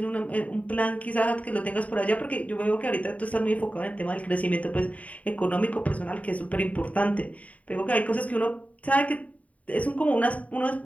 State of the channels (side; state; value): right; late; 0.068 ms